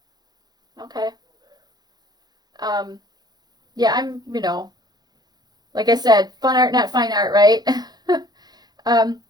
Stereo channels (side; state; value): left; late; 0.19 ms